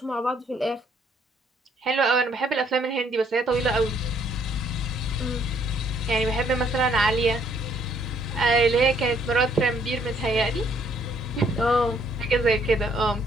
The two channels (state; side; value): normal; both; correlation 0.66